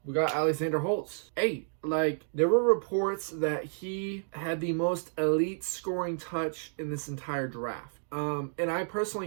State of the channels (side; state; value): left; silent; digital silence